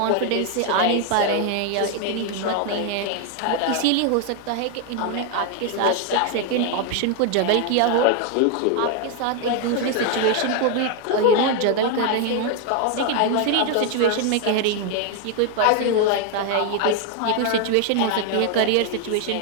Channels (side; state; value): both; different; correlation 0.01